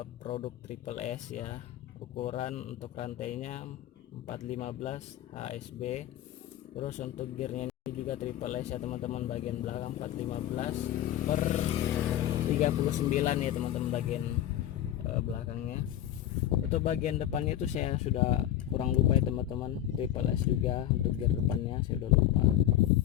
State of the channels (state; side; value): quieter; right; 12.2 dB